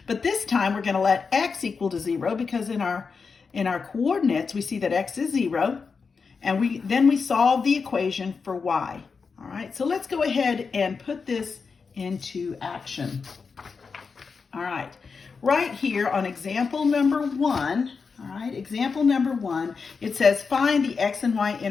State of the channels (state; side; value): quieter; right; 5.2 dB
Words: but this time we're going to let x equal to 0, because in our coordinates we see that x is 0, and then we solve the equation for y. All right, so let's go ahead and put this into action. All right, right here on example number 1, all right, example number 1, it says find the x and